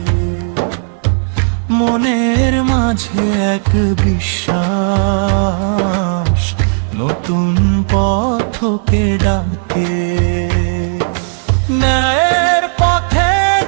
মনের মাঝে এক বিশ্বাস নতুন পথকে ডাকে। ন্যায়ের পথে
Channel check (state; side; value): silent; left; digital silence